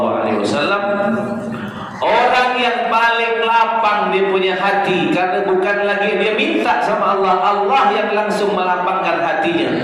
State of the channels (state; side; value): identical; both; correlation 1.00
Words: Orang yang paling lapang dia punya hati, karena bukan lagi dia minta sama Allah, Allah yang langsung melapangkan hatinya.